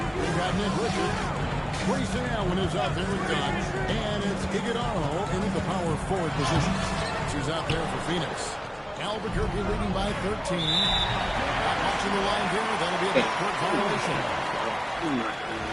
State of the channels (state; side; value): identical; both; correlation 1.00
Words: We've got Nick Richard. Grayson Allen is out there with Dunn. And it's Iguodaro in the power forward position. She's out there for Phoenix. Albuquerque leading by 13. Not watching the line here. That'll be a backcourt violation.